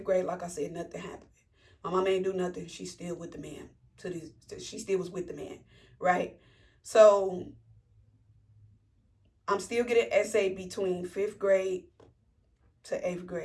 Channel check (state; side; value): identical; both; correlation 1.00